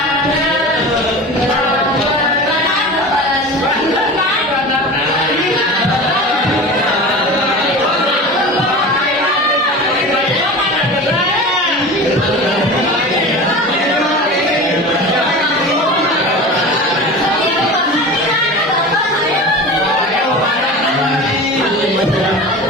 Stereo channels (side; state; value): both; normal; correlation 0.33